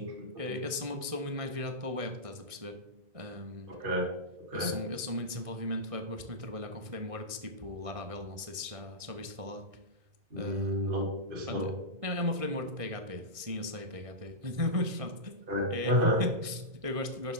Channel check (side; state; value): left; late; 1.6 ms